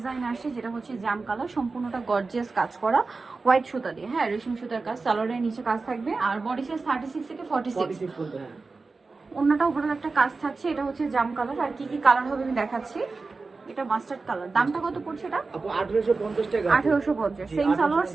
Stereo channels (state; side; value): quieter; left; 4.0 dB